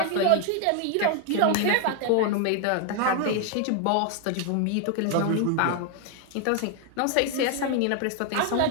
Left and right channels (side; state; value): both; different; correlation 0.00